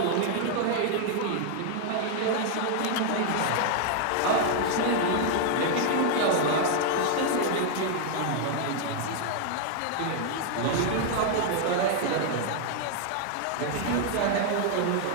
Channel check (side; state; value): both; different; correlation 0.00